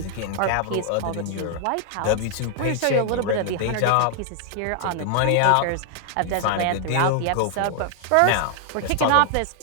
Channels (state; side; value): different; both; correlation 0.00